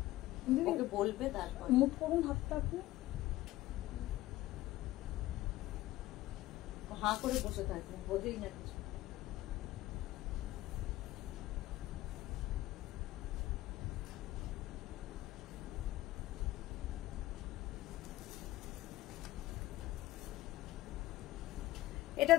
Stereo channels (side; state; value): right; quieter; 16.6 dB